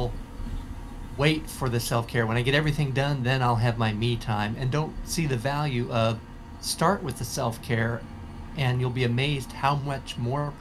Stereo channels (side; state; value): both; identical; correlation 1.00